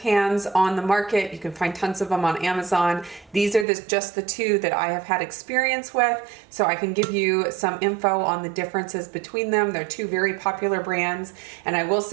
on the market. You can find tons of them on Amazon. These are just the two that I have had experience with, so I can give you some info on the differences between them. They're two very popular brands, and I will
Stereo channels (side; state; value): left; drops out; at 3.7 s